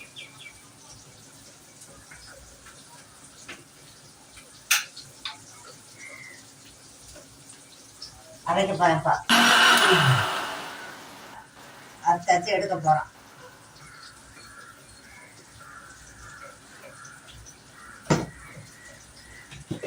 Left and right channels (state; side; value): identical; both; correlation 1.00